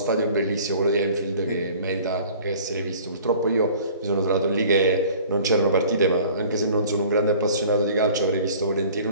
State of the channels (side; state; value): both; inverted; correlation -0.49